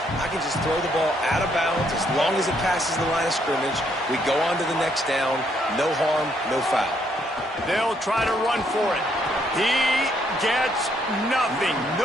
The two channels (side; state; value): both; normal; correlation 0.71